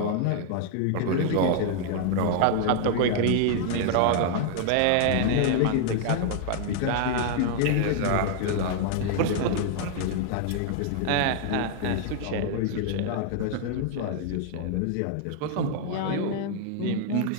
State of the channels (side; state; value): both; different; correlation 0.00